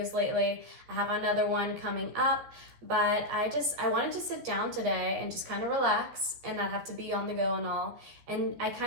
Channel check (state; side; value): late; left; 13 ms